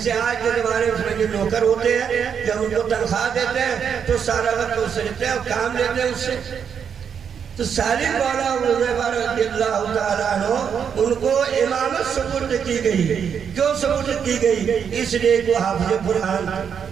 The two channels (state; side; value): quieter; left; 7.4 dB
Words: آج کے زمانے میں اس میں جو نوکر ہوتے ہیں، جب ان کو تنخواہ دیتے ہیں تو سارا وقت اس سے لیتے ہیں اور کام لیتے ہیں اس سے۔ تو سالم مولا حذیفہ رضی اللہ تعالیٰ عنہ ان کو امامت سپرد کی گئی۔ کیوں سپرد کی گئی؟ اس لیے وہ حافظ